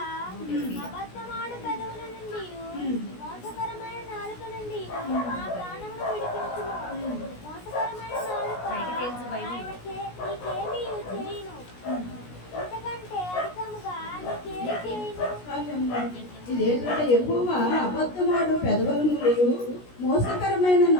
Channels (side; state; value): right; late; 16 ms